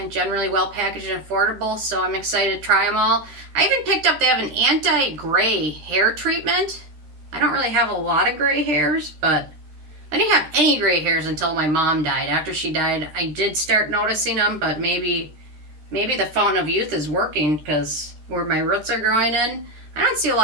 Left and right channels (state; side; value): late; left; 13 ms